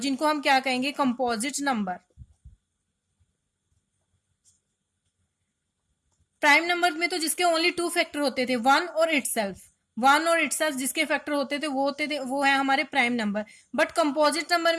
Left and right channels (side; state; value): both; identical; correlation 1.00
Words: हम क्या कहेंगे, कंपोजिट नंबर। प्राइम नंबर में तो जिसके ओनली 2 फैक्टर होते थे, 1 और इटसेल्फ, 1 और इटसेल्फ जिसके फैक्टर होते थे वो है हमारे prime number. But composite number